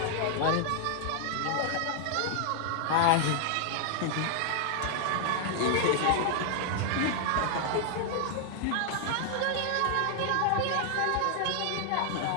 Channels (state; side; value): different; both; correlation 0.00